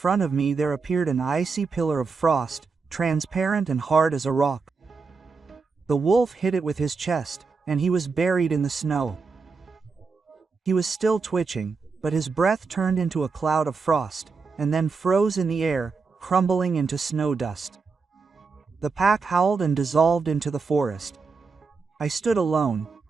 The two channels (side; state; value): left; quieter; 4.7 dB